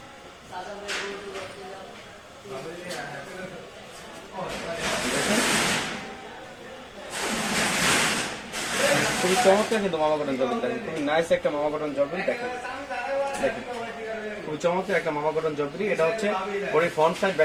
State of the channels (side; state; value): both; identical; correlation 1.00